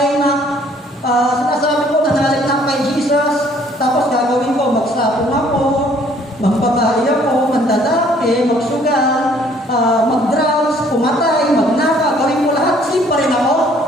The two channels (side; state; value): both; normal; correlation 0.60